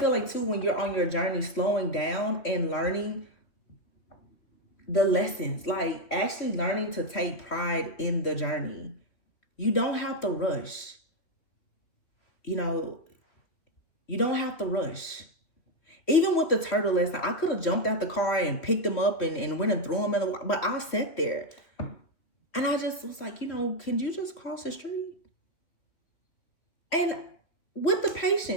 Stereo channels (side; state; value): right; late; 3.1 ms